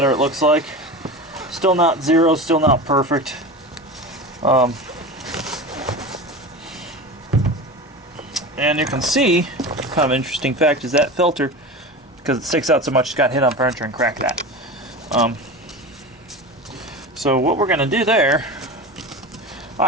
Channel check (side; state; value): both; normal; correlation 0.28